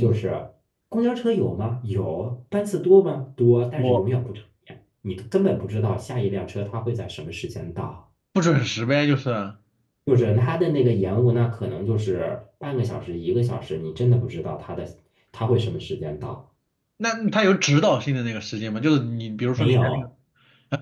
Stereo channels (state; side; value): identical; both; correlation 1.00